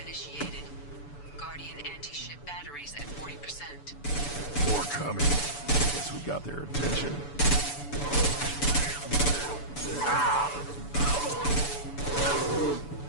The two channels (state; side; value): late; right; 6.9 ms